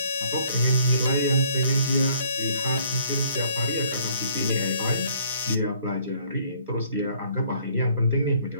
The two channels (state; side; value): inverted; both; correlation -0.61